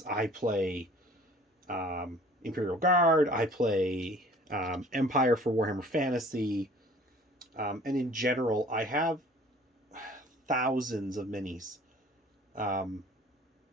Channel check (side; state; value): both; normal; correlation 0.50